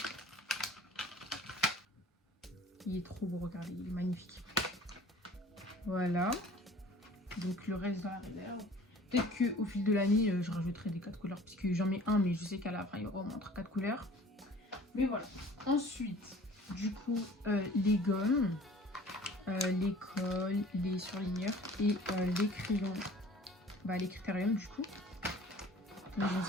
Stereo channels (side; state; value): both; normal; correlation 0.48